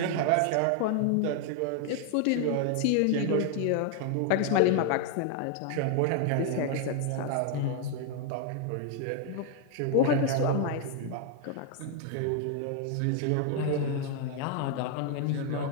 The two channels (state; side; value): different; both; correlation 0.00